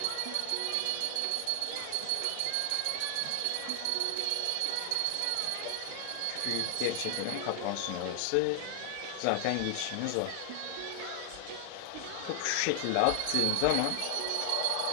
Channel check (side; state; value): both; different; correlation 0.00